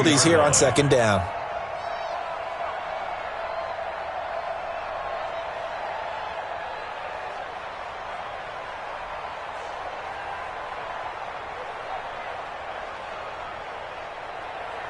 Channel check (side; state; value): both; identical; correlation 1.00